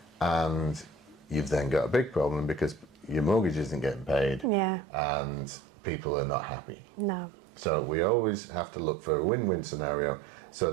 and you've then got a big problem because your mortgage isn't getting paid, and people are not happy. No. So we always have to look for a win-win scenario so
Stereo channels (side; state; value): left; drops out; at 4.5 s